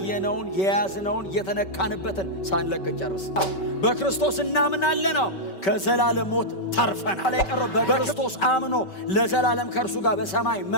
የያዝነውን የተነካንበትን ሳንለቅን ጨርስ። በክርስቶስ እናምናለን፣ ከዘላለም ሞት ተርፈናል። የቀረው በክርስቶስ አምኖ ለዘላለም ከእርሱ ጋር በሰማይ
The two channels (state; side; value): late; right; 5.2 ms